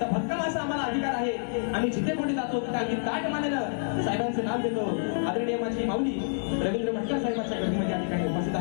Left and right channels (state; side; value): silent; right; digital silence